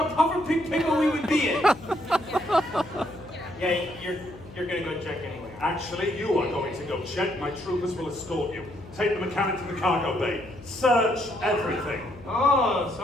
puffer pig pickle we would be in. Yeah, you're gonna go check anyway. Actually, you are going to go check. My troopers will escort you. Take the mechanic to the cargo bay. Search everything. Oh,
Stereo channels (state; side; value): noise; left; hum, 18 dB below the sound